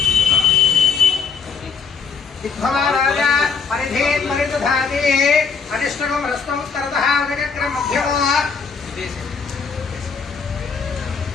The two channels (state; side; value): quieter; right; 5.5 dB